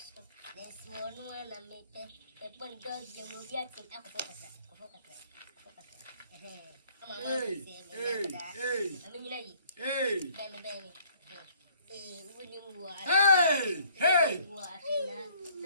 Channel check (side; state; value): both; inverted; correlation -0.59